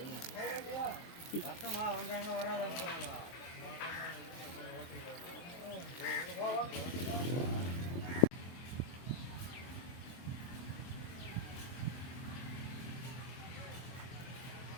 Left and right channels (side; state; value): right; late; 23 ms